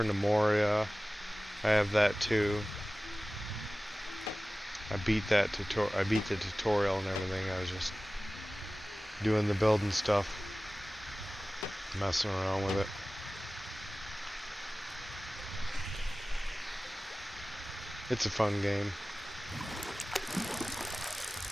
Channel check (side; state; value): both; normal; correlation 0.97